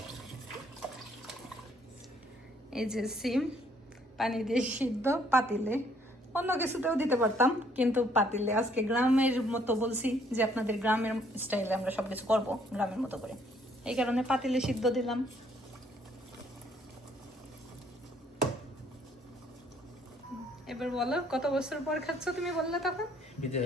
এই যে সিম পানি দিয়ে সিদ্ধ পাতিলে, অন্য কিছুতেও দিতে পারতাম, কিন্তু পাতিলে আজকে গ্রামের মতো বলছি যে আপনাদের গ্রামের স্টাইলে আমরা সবকিছু করব গ্রামের মতো করে, এই কারণে পাতিলে সিদ্ধ দিলাম। এবার বলো, কত বছর পর খাচ্ছ তুমি? বললে তখন বিদেশ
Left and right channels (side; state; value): both; normal; correlation 0.65